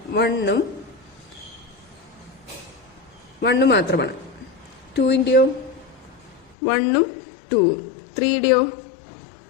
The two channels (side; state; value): right; drops out; at 6.6 s